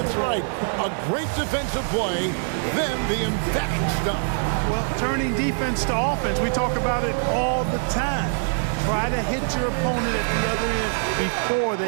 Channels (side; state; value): left; silent; 63 dB below the other